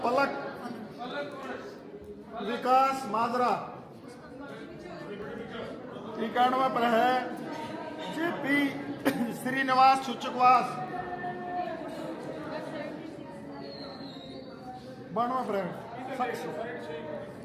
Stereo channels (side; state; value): both; identical; correlation 1.00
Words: पलक विकास माजरा। 91 पर है जेपी श्रीनिवास सुचकवास। 92 फ्रेंड